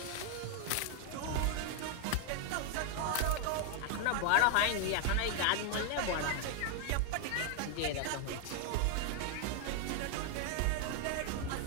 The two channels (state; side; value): different; both; correlation 0.00